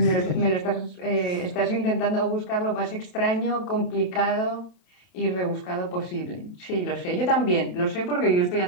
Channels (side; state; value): right; late; 28 ms